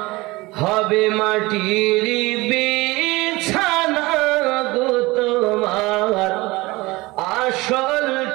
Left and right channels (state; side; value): quieter; left; 21.7 dB